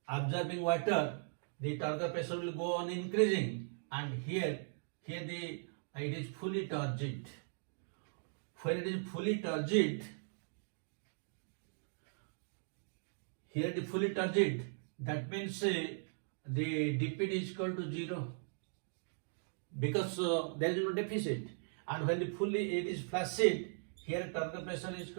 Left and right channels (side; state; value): left; silent; digital silence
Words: absorbing water, the Turgor pressure will go on increasing, and here it is fully turgid. When it is fully turgid, here it is fully turgid, that means the DPD is equal to 0, because there is no deficit. And when it is flaccid, here Turgor pressure is